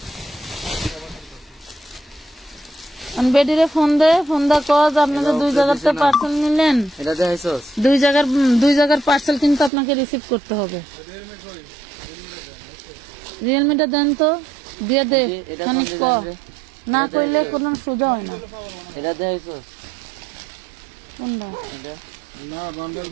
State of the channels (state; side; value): drops out; left; at 9.7 s